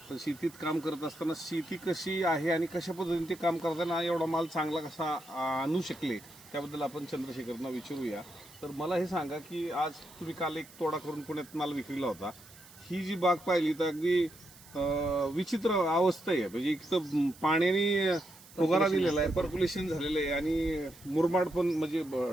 पण शेतीत काम करत असताना शेती कशी आहे आणि कशा पद्धतीने ते काम करताना एवढा माल चांगला कसा आणू शकले त्याबद्दल आपण चंद्रशेखरना विचारूया. तर मला हे सांगा की आज तुम्ही काल एक तोडा करून पुण्यात माल विक्रीला होता. ही जी बाग पाहिली तर अगदी विचित्र अवस्था आहे. म्हणजे एक तर पाण्याने फुगारा दिलेला आहे, पर्क्युलेशन झालेलं आहे आणि मुरमाड पण म्हणजे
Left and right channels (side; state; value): right; noise; hiss, 21 dB below the sound